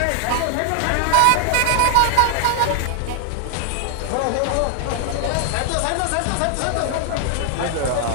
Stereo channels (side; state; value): both; different; correlation 0.00